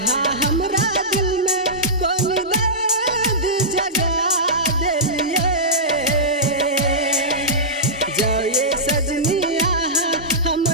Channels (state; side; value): normal; both; correlation -0.16